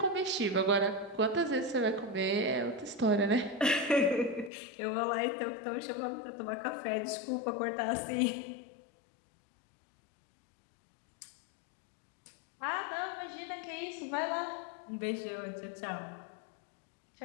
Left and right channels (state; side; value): drops out; right; at 4.5 s